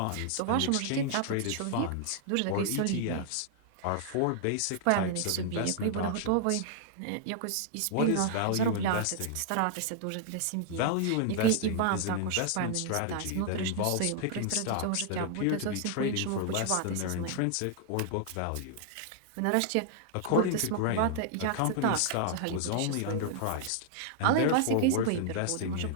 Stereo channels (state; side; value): different; both; correlation -0.01